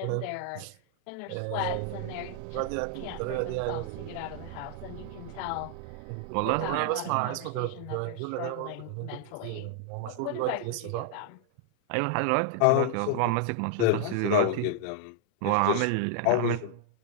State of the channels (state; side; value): different; both; correlation -0.01